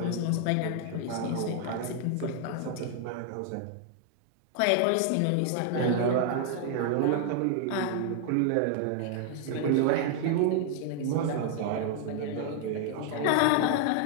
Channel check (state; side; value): different; both; correlation 0.00